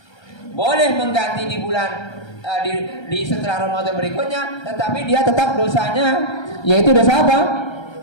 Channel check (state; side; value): late; right; 1.3 ms